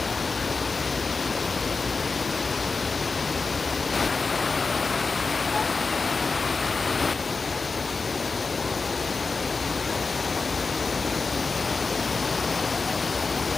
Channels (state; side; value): quieter; right; 4.2 dB